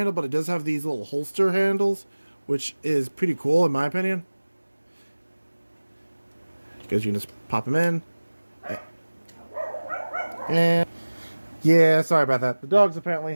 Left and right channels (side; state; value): both; inverted; correlation -1.00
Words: but it does have these little holster handles, which is pretty cool in my opinion. Because you can just pop them in. And yeah, sorry about that. The dogs apparently